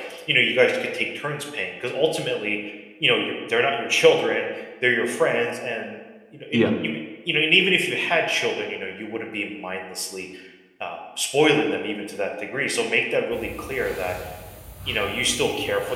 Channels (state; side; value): identical; both; correlation 1.00